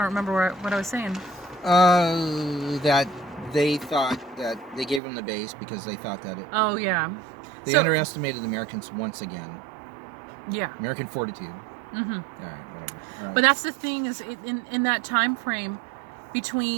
remember what I was saying. That they thought that they gave them the base because they thought that it... Oh, yeah. They underestimated the Americans once again. Yeah. American fortitude. Mm-hmm. All right, whatever. All right. But that's the thing, is in that time frame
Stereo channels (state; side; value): drops out; left; at 5.0 s